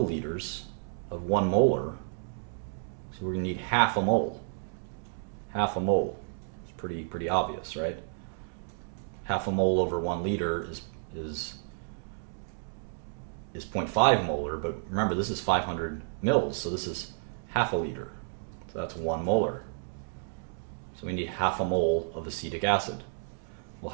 of 1 molar. So we're going to need half a mole. Half a mole. It's pretty obvious, right? Half a mole over 1 liter is 0.5 molar, but remember, this is 500 mils, so this is half a liter. So that's 1 molar. So we need half a mole of acetic acid. Well,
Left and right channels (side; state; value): left; silent; digital silence